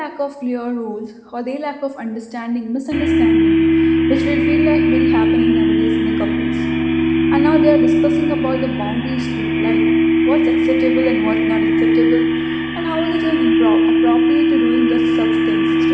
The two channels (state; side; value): identical; both; correlation 1.00